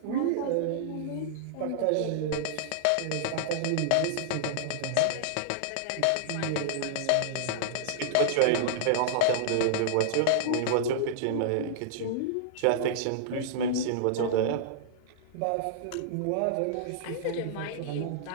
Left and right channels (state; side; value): different; both; correlation -0.01